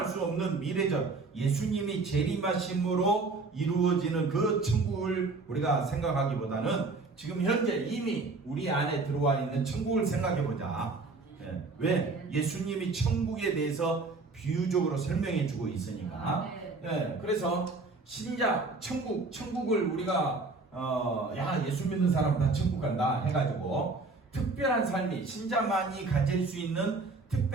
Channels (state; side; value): quieter; left; 3.7 dB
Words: 수 없는 미래적 예수님이 재림하심으로 이루어지는 그 천국을 우리가 생각하기보다는 지금 현재 이미 우리 안에 들어와 있는 천국을 생각해 보자. 왜? 예수님이 천국에 대해서 비유적으로 설명해 주고 있으니까. 그래서 신자 천국을 우리가 예수 믿는 사람 다 천국 간다 해가지고 특별한 삶이 신자만이 가질 수 있는